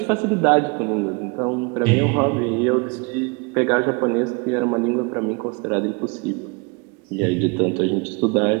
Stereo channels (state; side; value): quieter; left; 30.1 dB